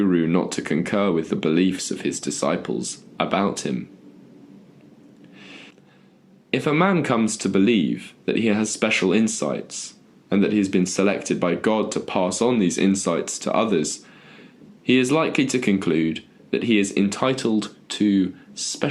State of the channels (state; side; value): identical; both; correlation 1.00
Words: not to concur with the beliefs of his disciples about him. If a man comes to believe that he has special insights, and that he has been selected by God to pass on these insights to others, he is likely to conclude that he is entitled to